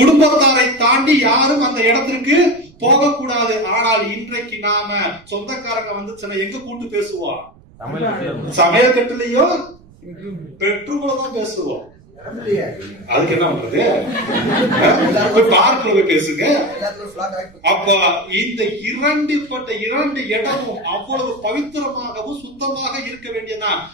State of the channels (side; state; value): right; noise; rumble, 26 dB below the sound